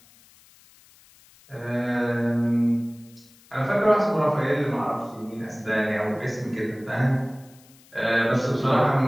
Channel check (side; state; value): left; noise; hiss, 27 dB below the sound